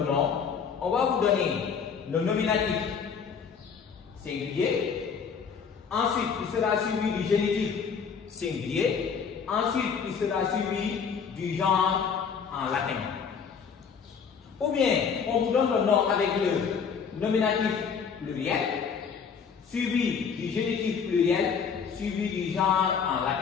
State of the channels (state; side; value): quieter; right; 6.4 dB